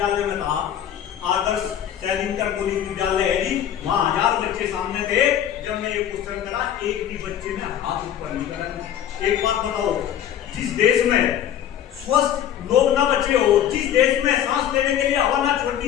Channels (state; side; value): quieter; right; 10.4 dB